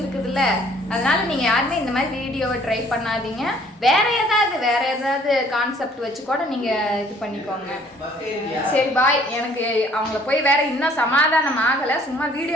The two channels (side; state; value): both; normal; correlation 0.58